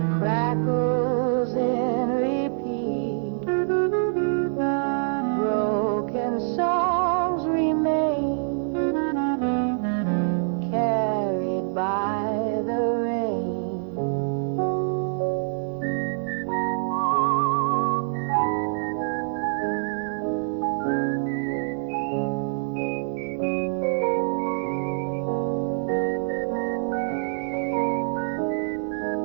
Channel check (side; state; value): left; silent; digital silence